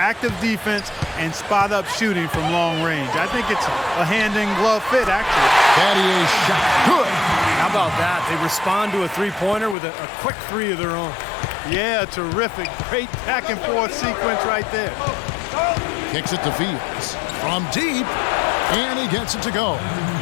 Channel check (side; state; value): right; drops out; at 9.8 s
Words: defense and spot-up shooting from long range. I think it's a hand-in-glove fit, actually. Battier's shot good. How about that? They respond to a three-pointer with a quick three of their own. Yeah, terrific. Great back-and-forth sequence right there. Kicks it to Fields from deep, and he gets it to go.